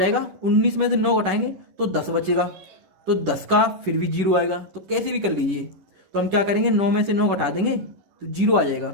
19 में से 9 घटाएंगे तो 10 बचेगा, तो 10 का फिर भी 0 आएगा, तो कैसे भी कर लीजिए। तो हम क्या करेंगे, 9 में से 9 घटा देंगे तो 0 आ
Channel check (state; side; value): late; left; 10 ms